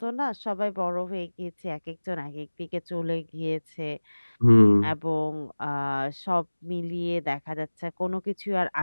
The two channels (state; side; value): inverted; both; correlation -1.00